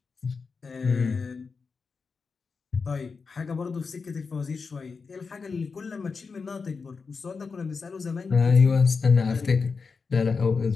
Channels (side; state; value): right; quieter; 4.9 dB